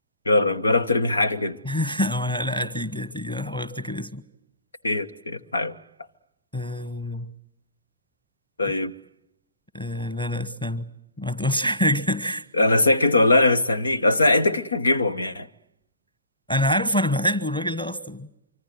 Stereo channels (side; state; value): both; inverted; correlation -0.55